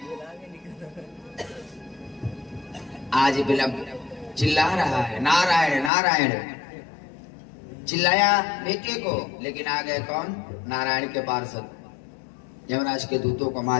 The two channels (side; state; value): right; drops out; at 5.9 s